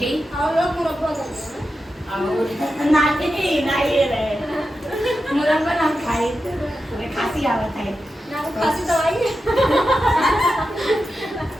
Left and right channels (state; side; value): normal; both; correlation 0.90